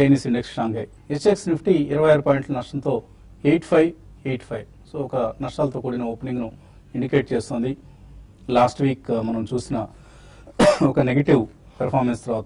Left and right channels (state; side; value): identical; both; correlation 1.00